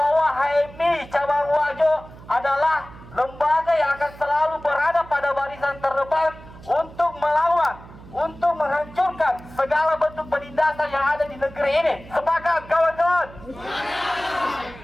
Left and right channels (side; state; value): right; noise; hum, 18 dB below the sound